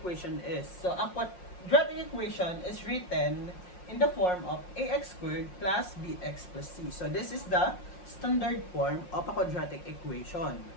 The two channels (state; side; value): late; right; 5.6 ms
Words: is. So ang quadratic equation is written in the form of ax squared plus bx plus c. So this is the standard form of a quadratic equation.